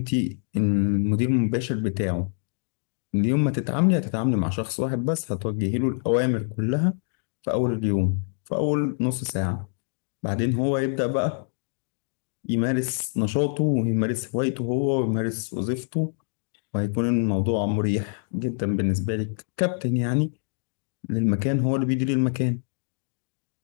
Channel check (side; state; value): right; silent; digital silence